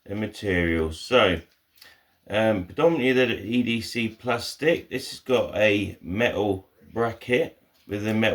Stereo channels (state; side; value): identical; both; correlation 1.00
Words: the materials. So predominantly the EDC plastic. This has got a metal bracket with the